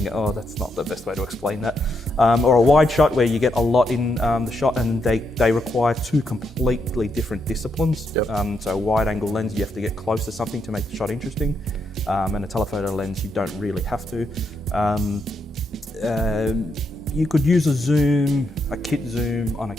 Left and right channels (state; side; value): normal; both; correlation 0.80